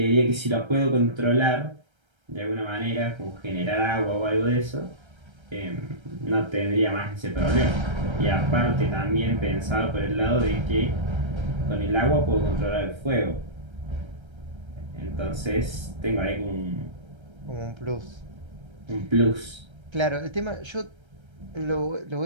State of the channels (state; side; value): late; left; 1.3 ms